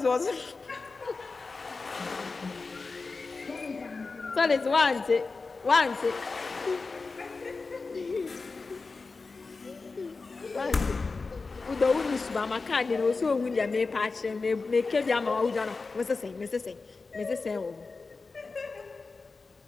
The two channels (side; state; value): right; quieter; 4.1 dB